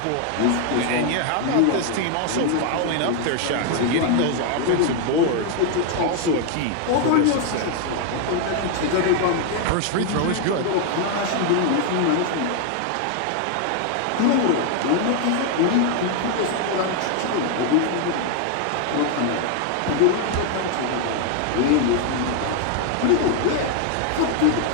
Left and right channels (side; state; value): both; different; correlation 0.00